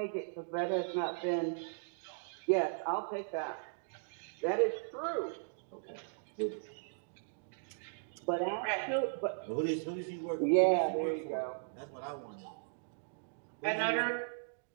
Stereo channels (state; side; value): silent; left; digital silence